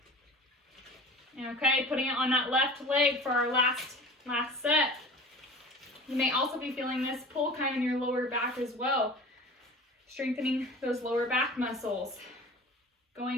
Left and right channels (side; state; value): both; normal; correlation 0.39